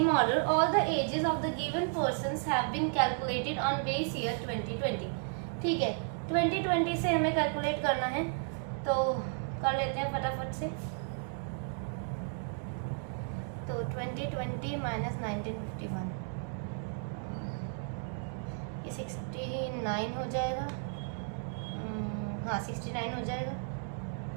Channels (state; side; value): silent; left; 55 dB below the other